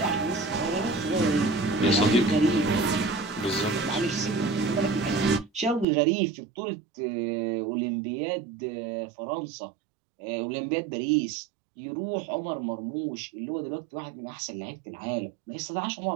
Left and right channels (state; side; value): drops out; left; at 5.9 s